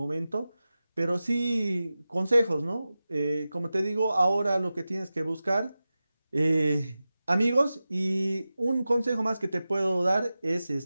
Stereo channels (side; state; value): both; inverted; correlation -0.95